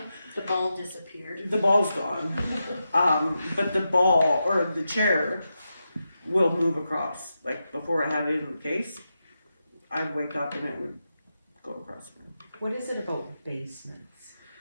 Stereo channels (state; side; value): inverted; both; correlation -0.88